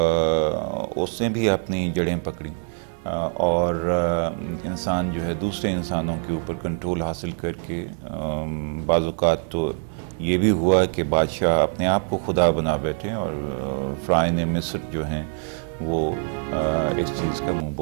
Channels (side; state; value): left; silent; 63 dB below the other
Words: اس نے بھی اپنی جڑیں پکڑیں، اور انسان جو ہے دوسرے انسانوں کے اوپر کنٹرول حاصل کر کے بعض اوقات تو یہ بھی ہوا کہ بادشاہ اپنے آپ کو خدا بنا بیٹھے، اور فرعون مصر جو ہیں وہ اس چیز کا منہ